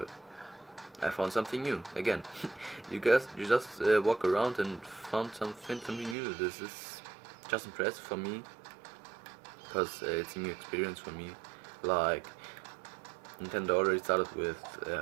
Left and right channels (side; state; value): left; drops out; at 6.2 s